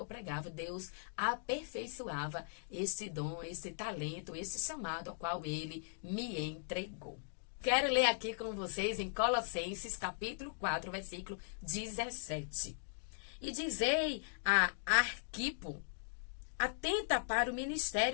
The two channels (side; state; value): right; silent; digital silence